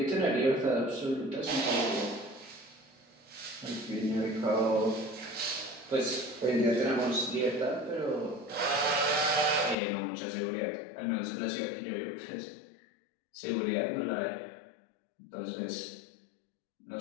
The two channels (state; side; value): drops out; right; at 9.8 s